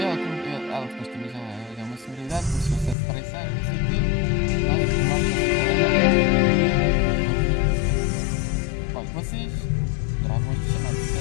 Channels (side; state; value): right; drops out; at 3.0 s